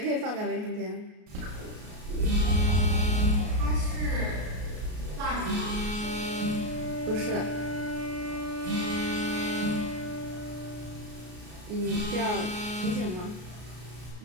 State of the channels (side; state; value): left; late; 33 ms